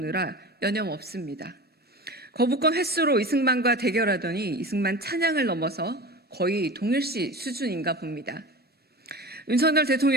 여념없습니다. 거부권 횟수로 이승만과 대결하더니 이승만 찬양을 넘어서 거의 동일시 수준인가 봅니다. 윤석열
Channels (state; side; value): normal; both; correlation 0.33